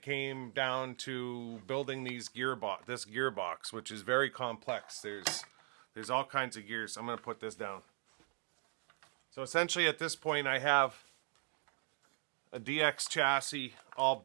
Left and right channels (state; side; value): quieter; left; 38.8 dB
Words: came down to building this gearbox, which is very complex. There's all kinds of gears. I'm going to put this down. So essentially at this point I have a DX chassis all